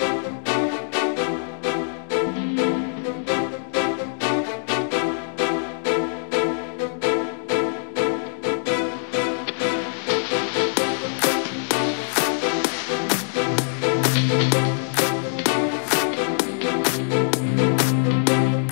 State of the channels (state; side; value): silent; right; digital silence